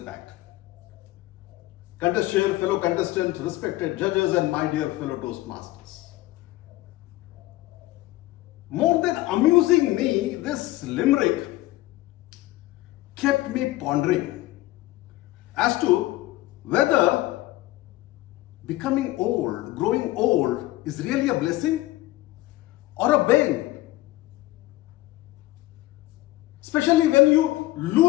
Contest share, fellow contestants, respected judges, and my dear fellow Toastmasters. More than amusing me, this limerick kept me pondering as to whether becoming old, growing old, is really a blessing or a bane. Especially when you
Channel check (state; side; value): quieter; right; 17.7 dB